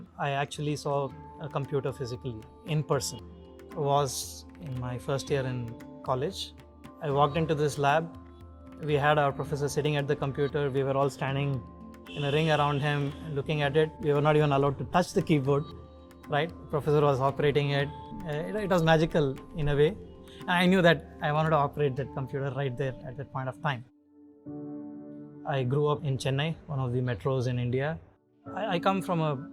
I actually saw a computer physically in person was in my first year in college. I walked into this lab. We had our professor sitting at the computer. We were all standing in a ring around him looking at it. We were not even allowed to touch the keyboard, right? The professor was operating it. It was magical in a way. And I knew that I wanted to operate that computer right there at that point of time. I grew up in Chennai, one of the metros in India. I come from a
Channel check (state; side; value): identical; both; correlation 1.00